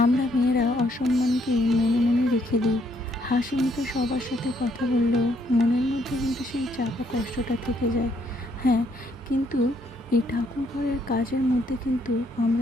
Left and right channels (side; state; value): both; normal; correlation 0.70